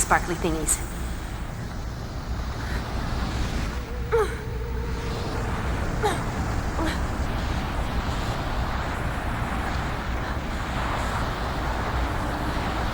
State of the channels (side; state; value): both; identical; correlation 1.00